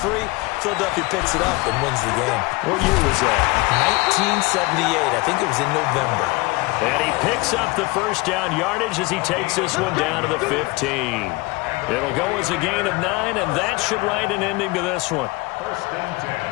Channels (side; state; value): right; quieter; 24.2 dB